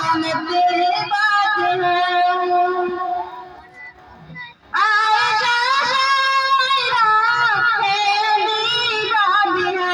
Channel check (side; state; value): both; identical; correlation 1.00